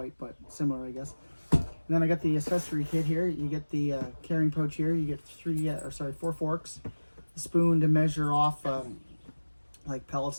but similar, I guess. And then I got the accessory kit here. You get the carrying pouch here. You get four forks, a spoon to measure off like pellets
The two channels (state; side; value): inverted; both; correlation -1.00